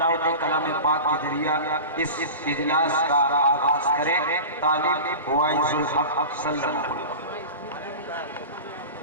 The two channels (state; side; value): inverted; both; correlation -0.31